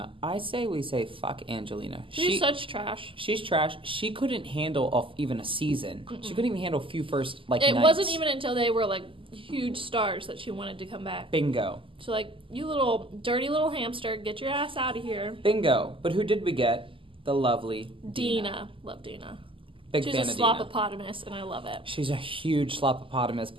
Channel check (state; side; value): late; left; 0.25 ms